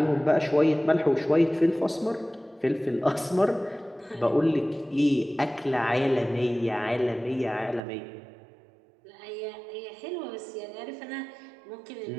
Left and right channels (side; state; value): left; drops out; at 7.8 s